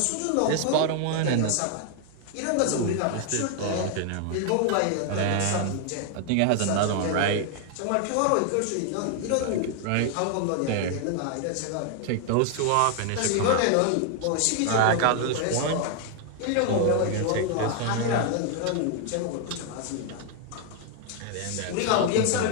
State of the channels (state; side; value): different; both; correlation 0.00